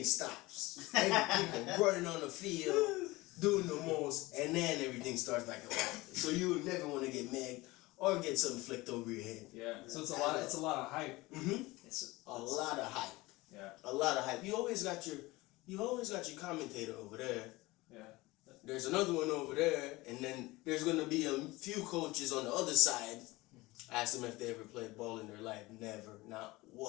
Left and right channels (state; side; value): quieter; right; 20.9 dB